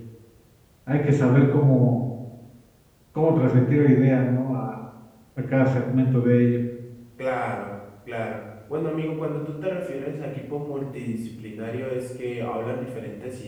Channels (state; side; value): identical; both; correlation 1.00